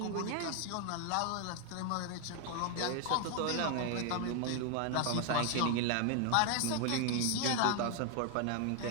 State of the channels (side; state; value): both; different; correlation 0.00